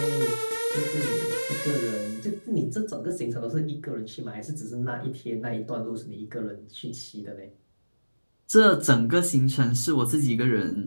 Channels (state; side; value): inverted; both; correlation -1.00